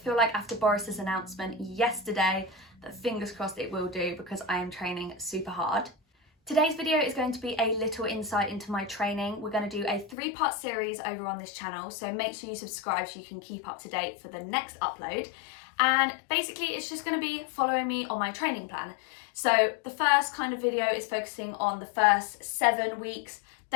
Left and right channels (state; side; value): drops out; right; at 10.2 s